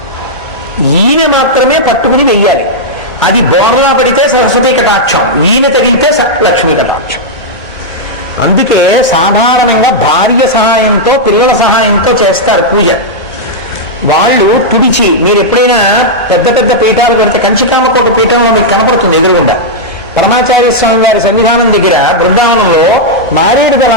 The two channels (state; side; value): normal; both; correlation -0.06